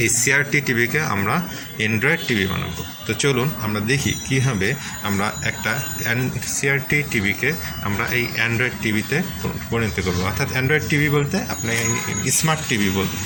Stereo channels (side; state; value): both; identical; correlation 1.00